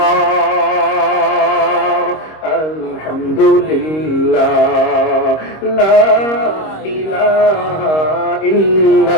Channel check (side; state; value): right; late; 26 ms